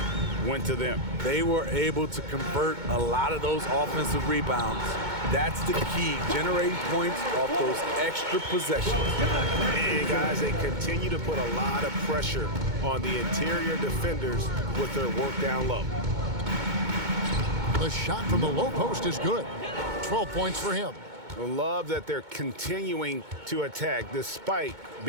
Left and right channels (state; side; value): late; left; 2.2 ms